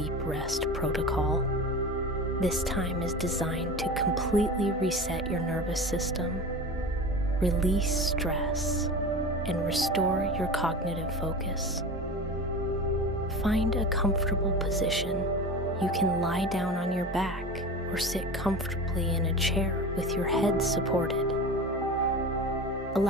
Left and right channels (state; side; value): normal; both; correlation 0.31